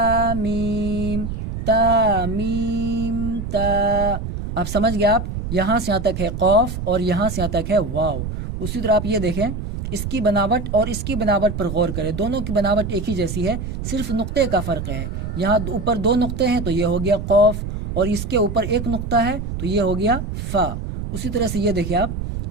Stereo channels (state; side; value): noise; right; rumble, 5 dB below the sound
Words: میم تا میم تا. اب سمجھ گئے آپ، یہاں سے یہاں تک ہے قاف اور یہاں سے یہاں تک ہے واو. اسی طرح آپ یہ دیکھیں، اس کی بناوٹ اور اس کی بناوٹ پر غور کریں، دونوں کی بناوٹ ایک ہی جیسی ہے، صرف نقطے کا فرق ہے. یہاں اوپر 2 نقطے ہیں تو یہ ہو گیا قاف، اور اس کے اوپر 1 نقطہ ہے تو یہ ہو گیا فا. اسی طرح سے یہ دیکھیں آپ،